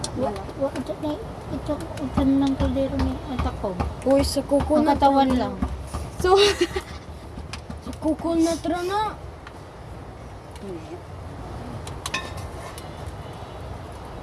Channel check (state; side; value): identical; both; correlation 1.00